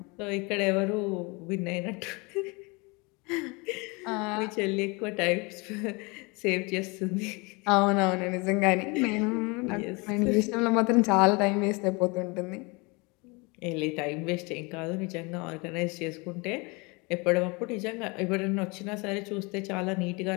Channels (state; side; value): quieter; right; 27.9 dB